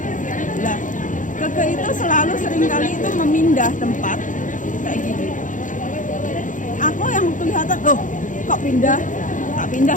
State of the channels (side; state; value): right; late; 0.37 ms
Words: Nah, Keke itu selalu seringkali itu memindah tempat kayak gini. Aku yang kelihatan, kok pindah, tak pindah